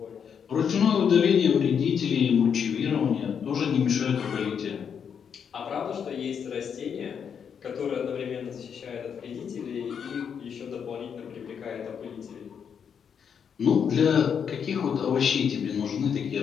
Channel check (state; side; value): quieter; right; 7.3 dB